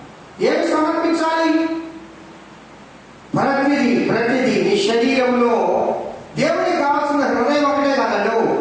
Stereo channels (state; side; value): identical; both; correlation 1.00